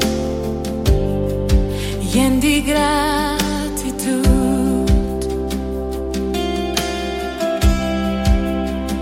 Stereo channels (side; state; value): both; identical; correlation 1.00